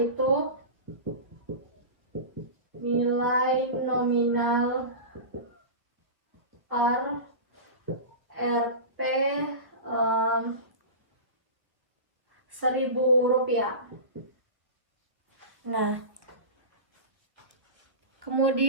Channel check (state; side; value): late; left; 1.2 ms